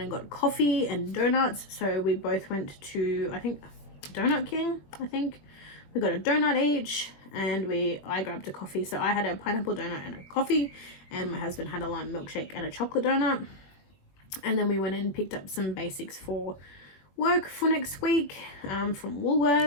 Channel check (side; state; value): right; late; 21 ms